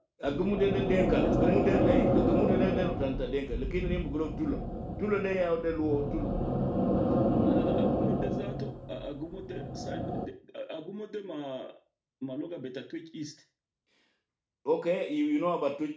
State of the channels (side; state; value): both; identical; correlation 1.00